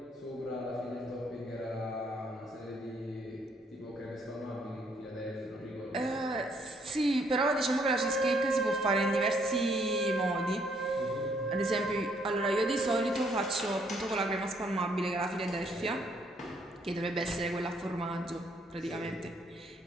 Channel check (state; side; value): normal; both; correlation 0.68